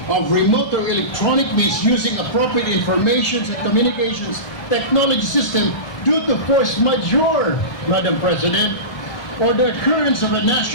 of remote or electronic means using appropriate information and communications technology system due to force majeure, Madam President, or the occurrence of a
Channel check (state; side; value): late; right; 1.2 ms